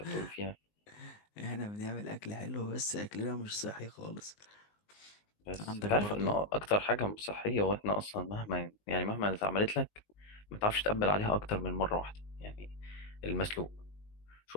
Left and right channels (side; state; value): right; late; 19 ms